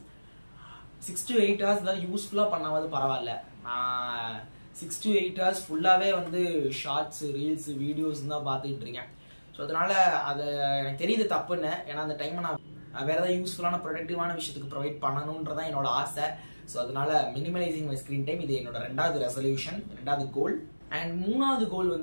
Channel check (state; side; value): inverted; both; correlation -1.00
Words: 6 to 8 hours தான் யூஸ்ஃபுல்லா பண்ணாவது பரவாயில்ல. நான் 6 to 8 hours ஃபுல்லாவே ஷார்ட்ஸ், ரீல்ஸ், வீடியோஸ் தான் பார்த்துக்கிட்டு இருக்கேன். ஸோ அதனால அது எனக்கு தெரியுது தப்புன்னு. ஏன்னா அந்த டைமை நான் வேற ஏதாவது யூஸ்ஃபுல்லான ப்ரொடக்டிவான விஷயத்துக்கு ப்ரொவைட் பண்ணணுன்றதான் என்னோட ஆசை. ஸோ அதனால மினிமலைசிங் மை ஸ்கிரீன் டைம் இது என்னோட 2வது ரெசல்யூஷன், 2வது கோல். அண்ட் 3வது கோல்